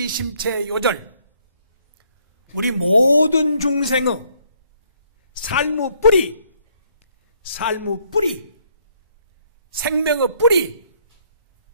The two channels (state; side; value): inverted; both; correlation -0.68